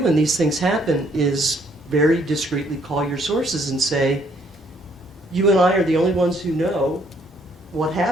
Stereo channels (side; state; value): both; normal; correlation 0.67